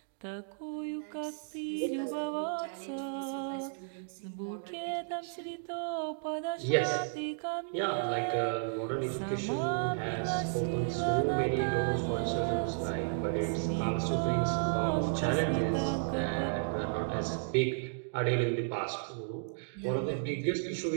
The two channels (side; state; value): left; silent; digital silence